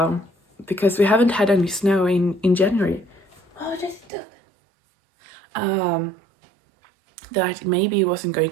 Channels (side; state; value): left; drops out; at 4.1 s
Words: because we haven't had any snow in January. Oh, that's dope. That maybe it wasn't going